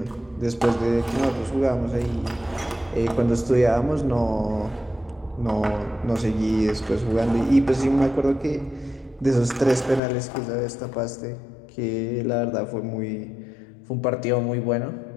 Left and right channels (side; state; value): right; drops out; at 10.0 s